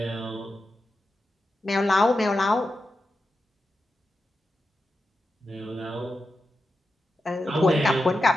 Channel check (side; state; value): both; normal; correlation 0.90